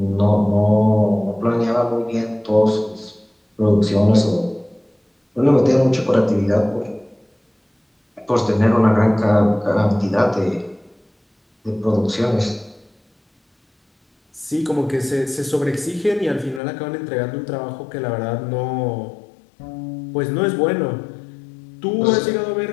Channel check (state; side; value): drops out; right; at 16.6 s